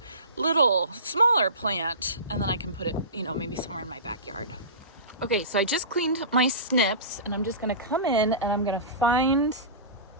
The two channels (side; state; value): both; inverted; correlation -0.32